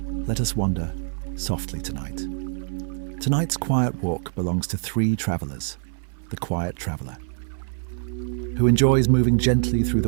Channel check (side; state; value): left; silent; 58 dB below the other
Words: let us wander softly tonight. Tonight's quiet walk belongs to 3 travelers. The quiet traveler, who enjoys moving gently through